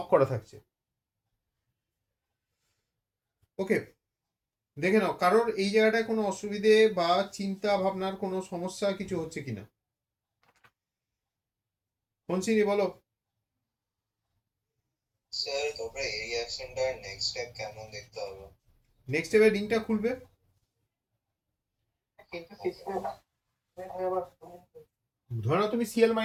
করা থাকছে। ওকে, দেখে নাও কারোর এই জায়গাটায় কোনো অসুবিধে বা চিন্তা ভাবনার কোনো সমস্যা কিছু হচ্ছে কিনা। হনসিনি বলো। স্যার তারপরে এই রিঅ্যাকশনটা নেক্সট স্টেপ কেমন দেখতে হবে? নেক্সট স্টেপে লিঙ্কটা খুলবে, ধরো তুমি সিএল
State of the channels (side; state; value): both; identical; correlation 1.00